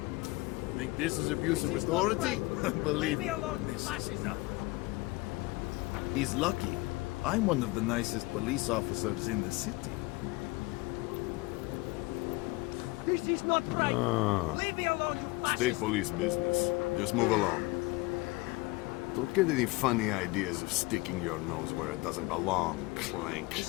Think this is abuse of authority? Believe me, he's lucky. I'm one of the nicest police officers in the city. This is not right. Leave me alone, you State police business. Just move along. Don't get any funny ideas of sticking your nose where it doesn't belong, Clank.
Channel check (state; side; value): quieter; right; 22.9 dB